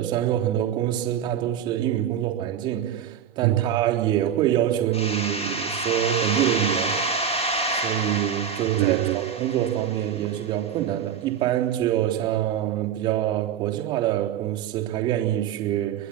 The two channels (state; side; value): quieter; left; 9.3 dB